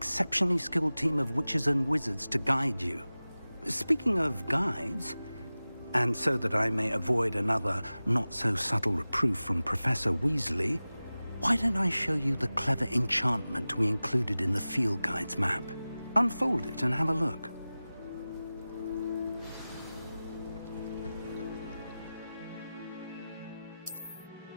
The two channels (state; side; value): inverted; both; correlation -0.97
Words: skilled team of witches and wizards to guide you. Speaking of guides, and so that I may avoid another not-so-subtle reproof from Professor Weasley, why don't I show you the clever enchantment we included in the field guide's map? Unfold it and have a look.